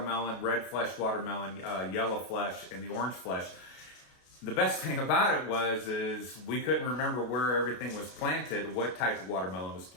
red flesh watermelon, yellow flesh, and the orange flesh. The best thing about it is we couldn't remember where everything was planted, what type of watermelon was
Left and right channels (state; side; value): late; right; 33 ms